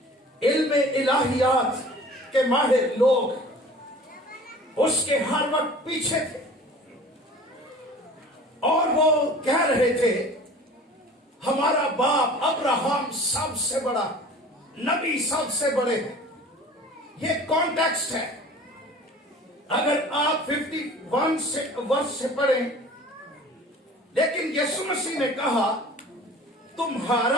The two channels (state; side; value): normal; both; correlation 0.44